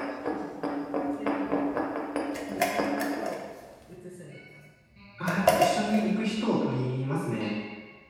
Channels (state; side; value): identical; both; correlation 1.00